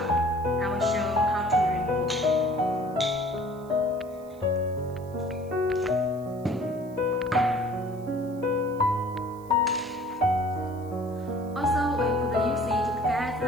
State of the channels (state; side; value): noise; right; hiss, 28 dB below the sound